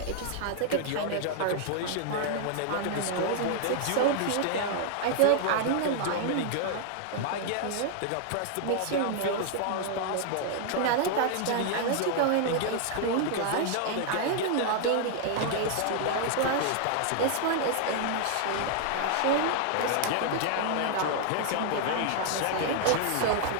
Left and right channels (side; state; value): both; different; correlation 0.00